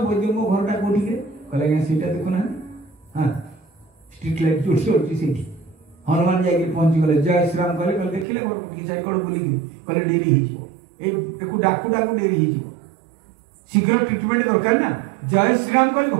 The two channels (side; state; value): left; drops out; at 8.2 s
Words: वैद्य मो घरटा कोठी के कहले सेटा देखो ना हां स्ट्रीट लाइट जोर से होची सेठी हनुमान जाके पहुंची गले जय श्री राम कहले कहले देखिले मोर की जाय कोड बुली कहले डेरी ही जो ए देखु डाकू डाकू डेरी ही जो शीघ्र ट्रीटमेंट दरकार ना जय श्री राम कहले